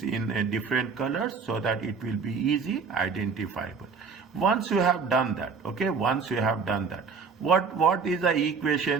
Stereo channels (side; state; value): left; quieter; 5.3 dB